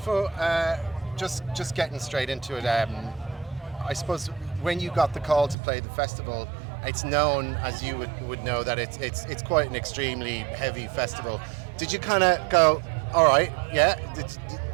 just getting straight into it. I suppose when you got the call to play the festival, it's known, as you would know, that it's quite an extremely heavy festival. Did you kind of go, all right, yeah?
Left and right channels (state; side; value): drops out; left; at 5.6 s